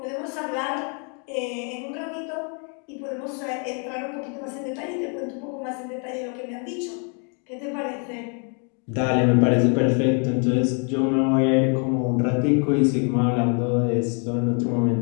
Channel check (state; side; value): quieter; right; 39.4 dB